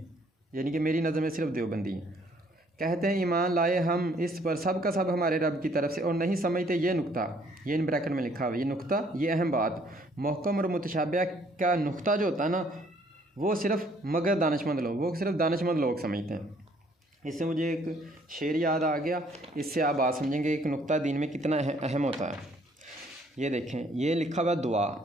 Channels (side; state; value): both; normal; correlation 0.63